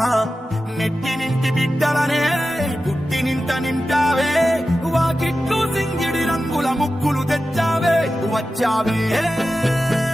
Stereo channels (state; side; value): normal; both; correlation 0.93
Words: నెట్టి నింటి బిడ్డలనే పుట్టి నింట నింటావే వాకిట్లు సింగిడి రంగుల ముక్కులు తెచ్చావే వచ్చావే